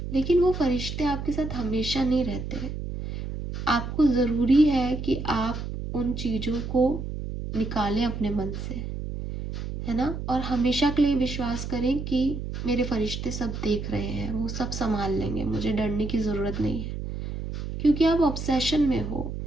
लेकिन वो फरिश्ते आपके साथ हमेशा नहीं रहते. आपको ज़रूरी है कि आप उन चीज़ों को निकालें अपने मन से. है ना। और हमेशा के लिए विश्वास करें कि मेरे फरिश्ते सब देख रहे हैं, वो सब संभाल लेंगे, मुझे डरने की ज़रूरत नहीं है। क्योंकि आप ऑब्सेशन में हो,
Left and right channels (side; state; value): right; noise; hum, 6 dB below the sound